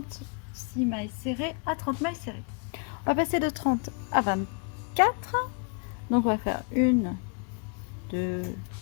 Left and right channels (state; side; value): quieter; right; 36.4 dB